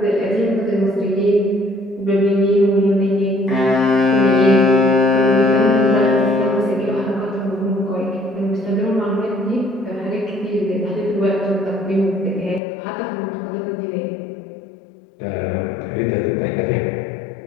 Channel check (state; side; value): drops out; right; at 12.6 s